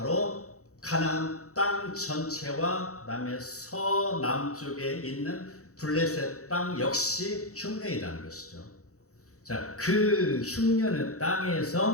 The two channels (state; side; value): late; right; 0.65 ms